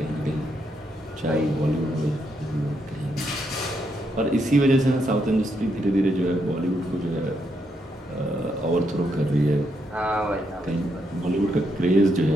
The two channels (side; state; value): both; normal; correlation 0.79